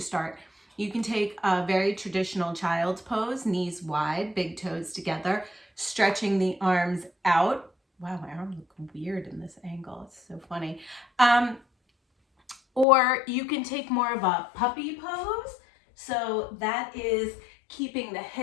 start. You can take a very traditional child's pose, knees wide, big toes together, stretching the arms out. Wow, my arms look weird in this angle. It's so funny. Or you can take more of a puppy pose. So that is keeping the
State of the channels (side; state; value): right; drops out; at 12.9 s